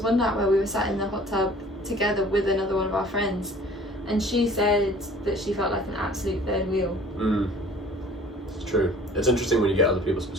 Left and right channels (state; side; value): normal; both; correlation 0.50